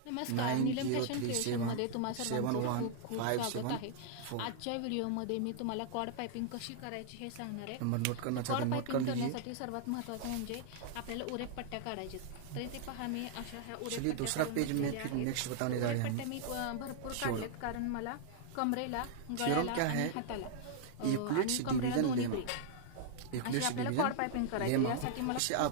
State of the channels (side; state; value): both; different; correlation -0.01